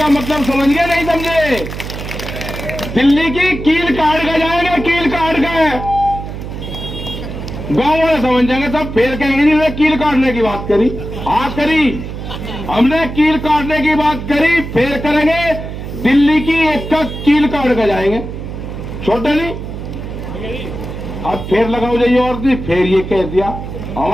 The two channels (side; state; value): right; noise; hum, 8 dB below the sound